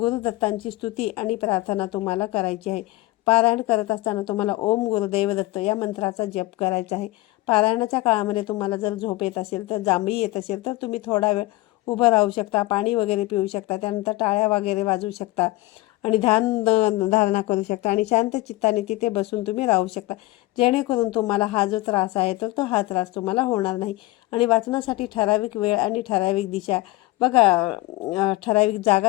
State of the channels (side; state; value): right; quieter; 19.3 dB